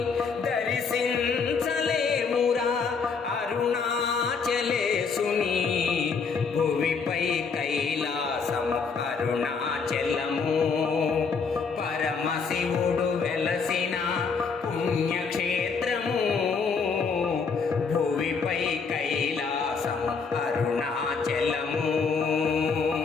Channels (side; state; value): right; quieter; 5.3 dB